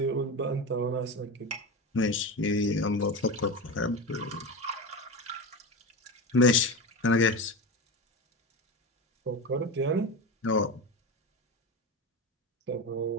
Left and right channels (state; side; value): normal; both; correlation 0.22